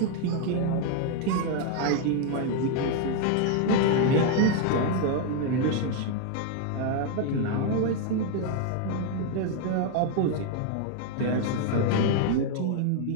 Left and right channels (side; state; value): both; different; correlation 0.00